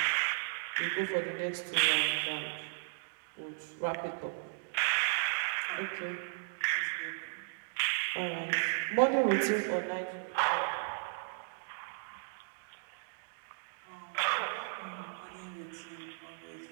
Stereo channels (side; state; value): left; silent; digital silence